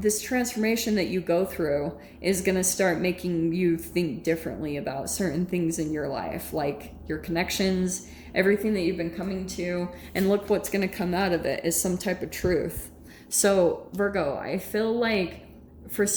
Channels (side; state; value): both; identical; correlation 1.00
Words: transformation that you go through is going to start making you think differently about certain things in your life, like your connections, everything that you've been coming to, and look, what's going to come out of it is some type of truth. So Virgo, I feel like for